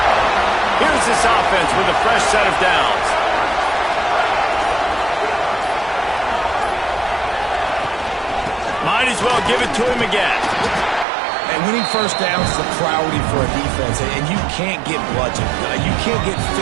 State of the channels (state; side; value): drops out; left; at 11.1 s